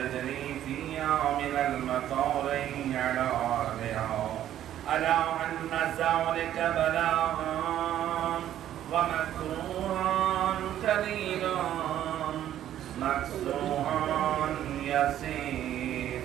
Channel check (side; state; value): left; quieter; 11.6 dB